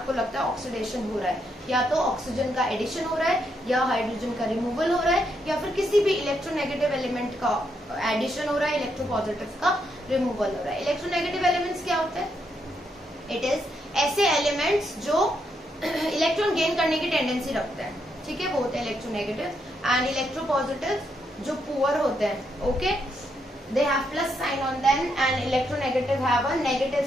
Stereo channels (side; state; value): both; normal; correlation 0.78